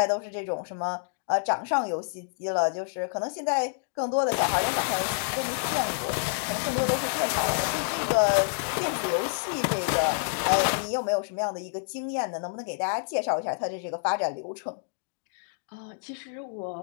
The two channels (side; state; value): right; silent; digital silence